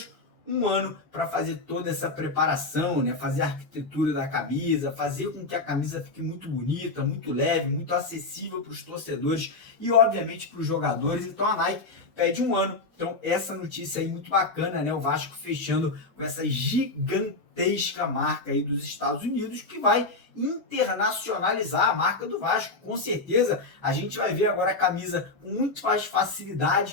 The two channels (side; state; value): right; quieter; 3.4 dB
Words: um ano para fazer toda essa preparação, né? Fazer a arquitetura da camisa, fazer com que a camisa fique muito bonita, muito leve, muito acessível para os torcedores e, obviamente, para os jogadores. Então, a Nike pede um ano. Então, essa notícia aí muito bacana, né? O Vasco fechando com essa gigantesca marca aí dos Estados Unidos, que vai internacionalizar a marca do Vasco. Com certeza, a gente vai ver agora a camisa com muito mais